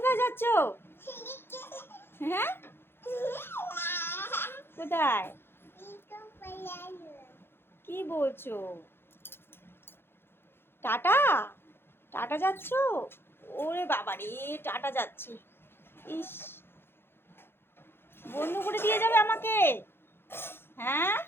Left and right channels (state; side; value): late; right; 0.11 ms